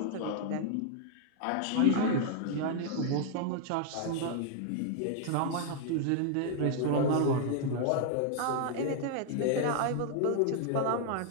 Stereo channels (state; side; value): different; both; correlation 0.00